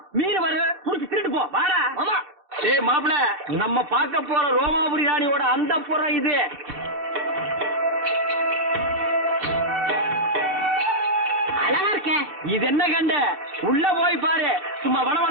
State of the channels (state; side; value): late; left; 2.7 ms